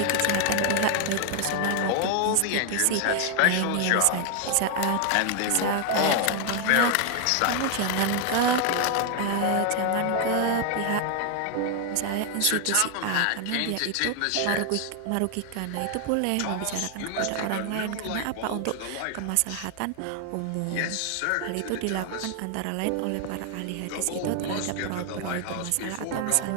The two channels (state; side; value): different; both; correlation 0.00